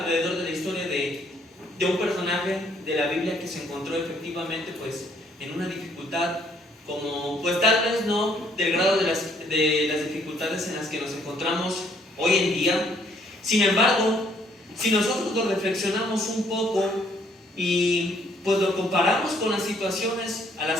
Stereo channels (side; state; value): both; normal; correlation 0.66